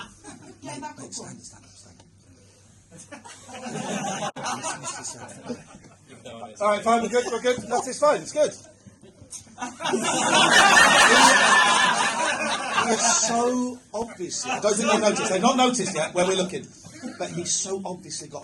Get back up. All right, fine. We're good. That is fine. It's good. He's so obviously. I don't think they noticed. They've not noticed yet where we're looking. But he's so obviously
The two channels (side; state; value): both; identical; correlation 1.00